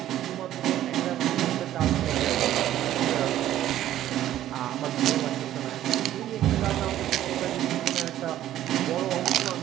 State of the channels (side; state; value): left; quieter; 12.7 dB